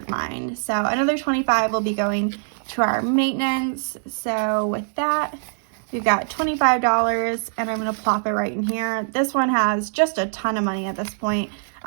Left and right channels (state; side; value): silent; left; digital silence